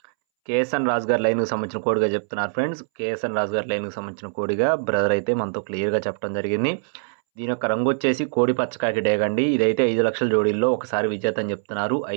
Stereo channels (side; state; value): left; silent; 63 dB below the other